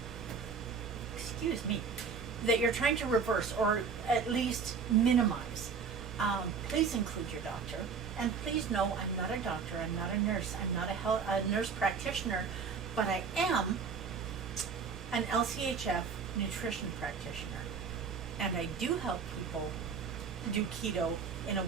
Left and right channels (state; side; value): quieter; left; 5.7 dB